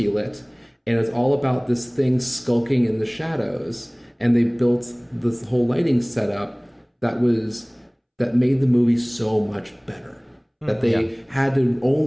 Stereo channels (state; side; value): identical; both; correlation 1.00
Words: And it's all about this thing skulking in the shadows. And they built this whole lighting setup that made the movie so much better. That they could